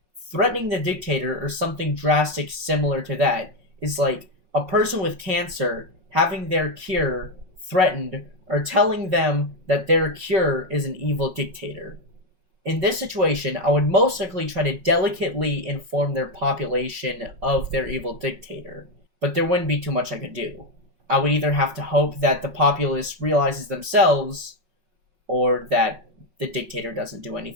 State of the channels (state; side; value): late; left; 5.4 ms